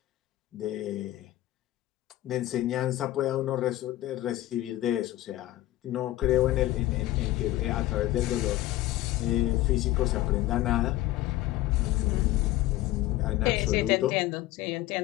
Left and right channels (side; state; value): right; quieter; 15.9 dB